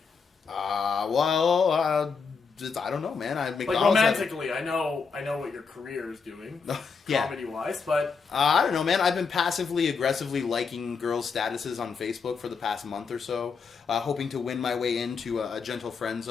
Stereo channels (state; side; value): quieter; right; 5.3 dB